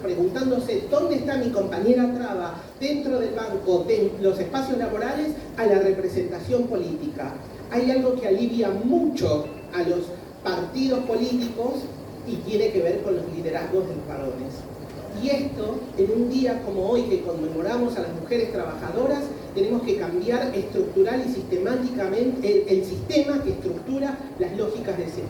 dónde está mi compañera traba dentro del banco, de los espacios laborales, a la representación política. Hay algo que alivia mucho a los partidos políticos y tiene que ver con los liderazgos de los varones. Y esto, en un día como hoy que conmemoramos a las mujeres trabajadoras, tenemos que cambiar estructural y sistemáticamente el sistema que estructura las lógicas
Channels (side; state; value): both; identical; correlation 1.00